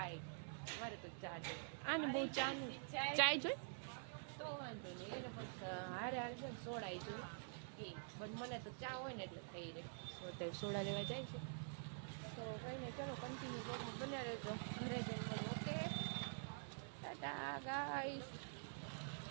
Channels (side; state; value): left; silent; digital silence